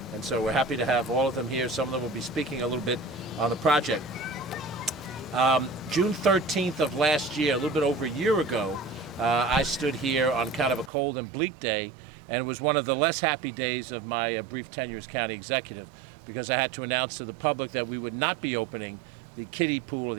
And so we're happy to have all of them here. Some of them will be speaking a little bit on the project. June 13th of last year, a little bit over a year ago, I stood here on kind of a cold and bleak day, and it was one of the less happy days of my brief tenure as county executive, because I had to announce to the public that we would not be opening the kiddie pool, or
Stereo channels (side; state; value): left; drops out; at 10.9 s